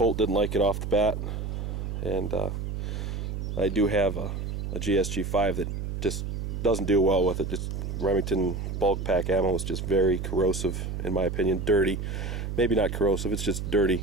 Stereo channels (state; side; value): noise; right; hum, 4 dB below the sound